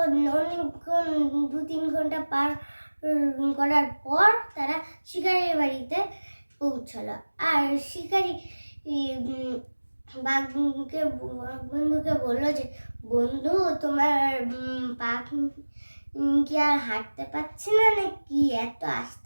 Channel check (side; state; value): both; inverted; correlation -1.00